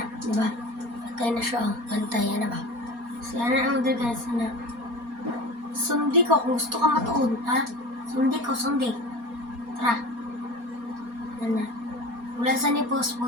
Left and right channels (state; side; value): late; left; 4.2 ms